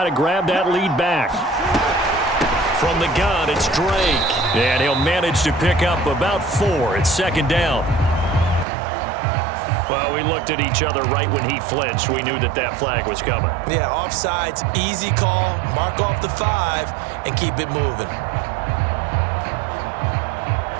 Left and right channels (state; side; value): drops out; left; at 8.7 s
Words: to grab that lead back. From the gun, it's Drake. And he'll manage to pick up about 4. It's 2nd down. Well, we looked at each other right when he flinched. We knew that that flag was coming. Yeah, offsides, easy call. Mark off the 5 and keep it moving.